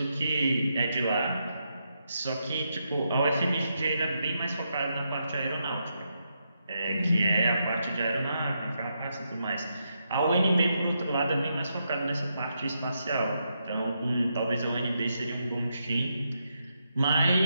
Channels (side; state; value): both; inverted; correlation -0.82